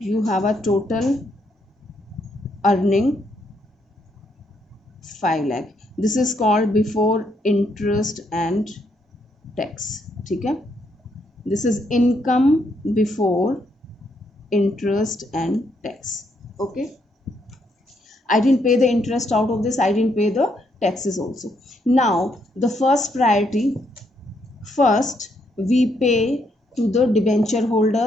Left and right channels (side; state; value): both; normal; correlation 0.75